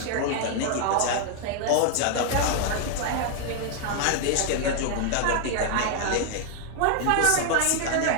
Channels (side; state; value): both; different; correlation 0.00